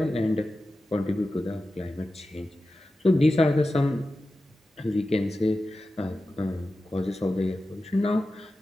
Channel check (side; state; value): both; normal; correlation 0.93